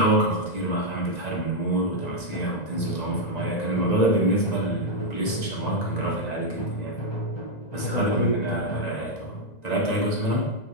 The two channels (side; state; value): right; late; 2.0 ms